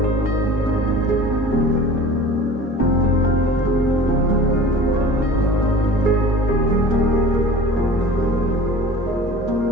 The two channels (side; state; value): both; normal; correlation 0.41